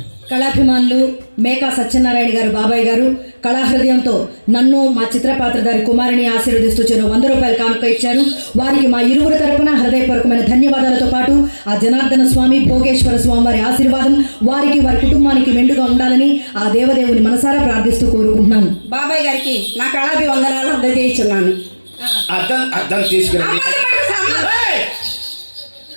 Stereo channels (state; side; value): inverted; both; correlation -1.00